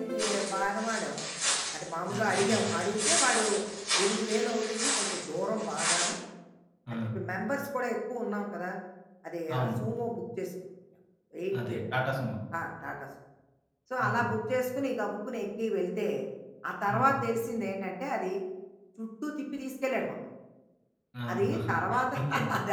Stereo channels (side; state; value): both; identical; correlation 1.00